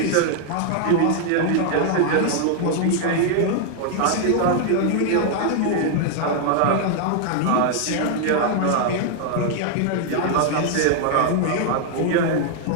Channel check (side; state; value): both; different; correlation 0.00